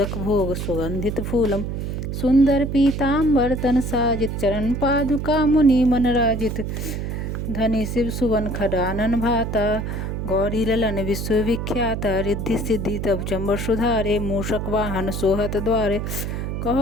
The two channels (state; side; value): noise; right; hum, 3 dB below the sound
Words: भोग सुगंधित फूलम सुंदर पीताम्बर तन साजित चरण पादुका मुनि मन राजित धनी शिव सुवन खडानन भाता गौरी ललन विश्वविख्याता रिद्धि सिद्धि तब चंबर सुधारे मूषक वाहन सोहत द्वारे